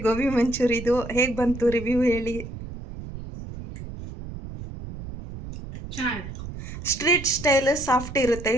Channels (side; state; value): right; noise; rumble, 11 dB below the sound